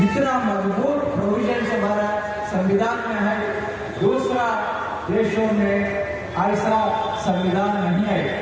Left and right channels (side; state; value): both; identical; correlation 1.00